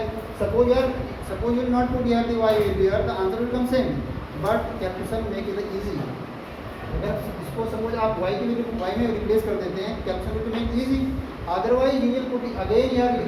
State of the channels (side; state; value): both; identical; correlation 1.00